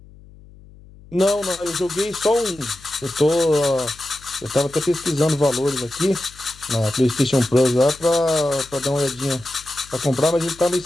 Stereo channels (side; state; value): left; noise; hum, 22 dB below the sound